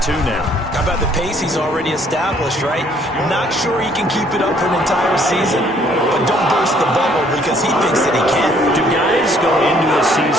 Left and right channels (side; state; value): both; normal; correlation 0.63